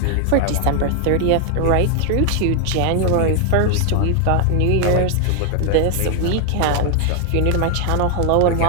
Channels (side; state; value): both; different; correlation 0.01